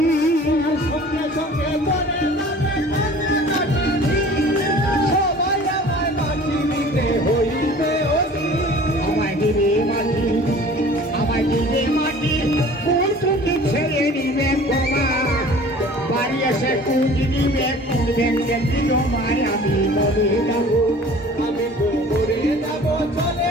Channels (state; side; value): normal; both; correlation 0.46